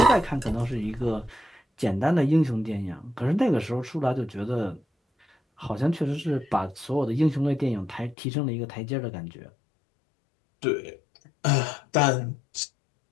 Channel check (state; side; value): drops out; right; at 8.2 s